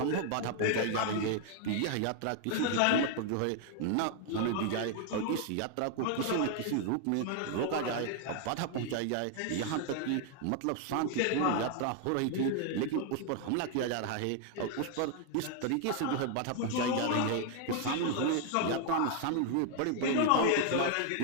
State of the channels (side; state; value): both; different; correlation 0.00